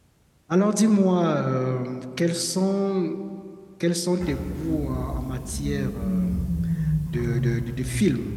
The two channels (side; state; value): both; identical; correlation 1.00